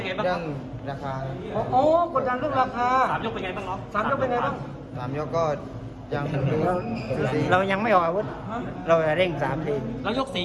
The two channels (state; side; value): identical; both; correlation 1.00